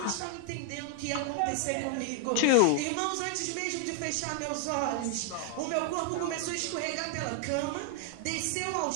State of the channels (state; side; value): different; both; correlation 0.00